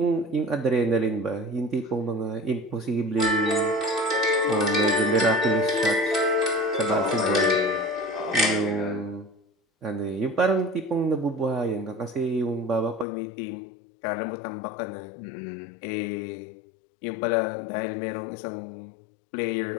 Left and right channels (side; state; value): right; drops out; at 13.1 s